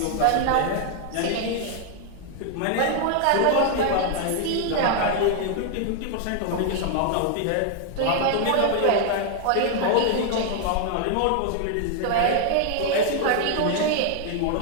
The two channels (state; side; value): different; both; correlation 0.00